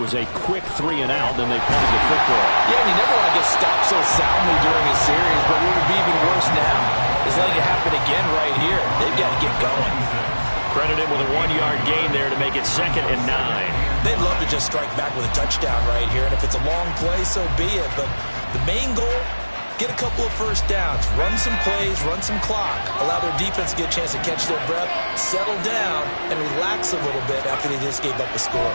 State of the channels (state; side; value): inverted; both; correlation -1.00